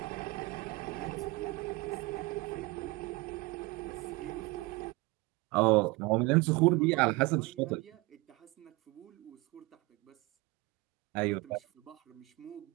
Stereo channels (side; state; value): left; quieter; 23.5 dB